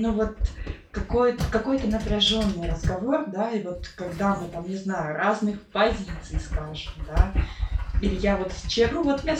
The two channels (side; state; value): both; identical; correlation 1.00